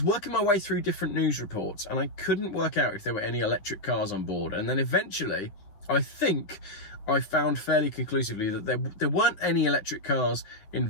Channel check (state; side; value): late; right; 9.9 ms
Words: working my way through different news reports and I couldn't work out if there were any electric cars on board. And then eventually, I think I found fairly conclusively that there weren't any electric cars